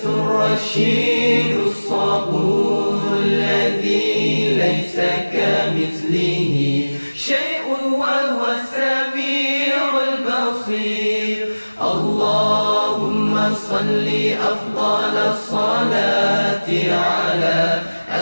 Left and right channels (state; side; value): inverted; both; correlation -1.00